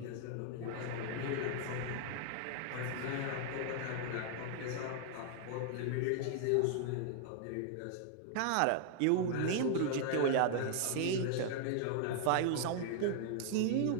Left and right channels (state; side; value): different; both; correlation 0.00